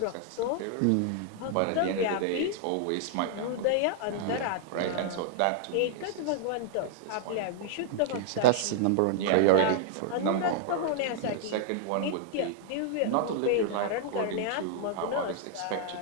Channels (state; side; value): different; both; correlation 0.00